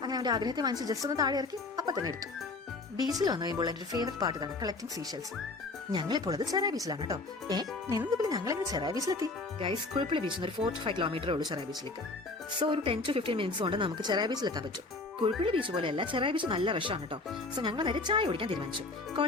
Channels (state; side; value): quieter; right; 3.4 dB